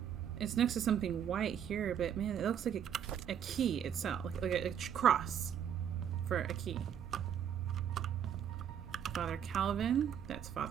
it's next to something white here, but man, it looks like a key itself, like a cross for a key. Father Calvin, that's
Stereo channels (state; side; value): quieter; left; 9.0 dB